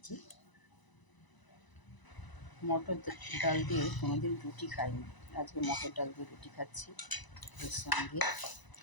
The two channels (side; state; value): right; late; 1.0 ms